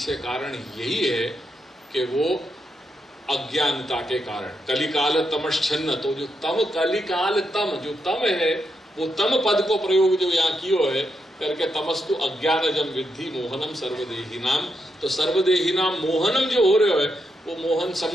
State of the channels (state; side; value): normal; both; correlation 0.82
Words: कारण यही है कि वो अज्ञानता के कारण कलिकाल तमश्चन्न, तो जो तम कलिकाल तम जो तम है वो तम पद को प्रयोग जो यहाँ कियो है करके तमस्तु अज्ञानजम विद्धि मोहनम सर्वदेहिनाम। तो सर्वदेहिनाम मोहनम जो हो रहे है वो मोहन